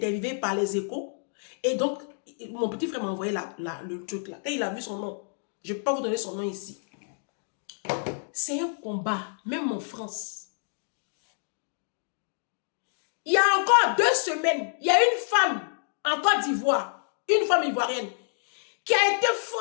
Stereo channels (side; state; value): right; silent; digital silence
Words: par Les Échos. Et donc, mon petit frère m'a envoyé le truc là. Et il a vu son nom. Je ne peux pas vous donner son nom ici. C'est un combat, même en France. Il y a encore 2 semaines, il y a une femme en Côte d'Ivoire, une femme ivoirienne, qui a été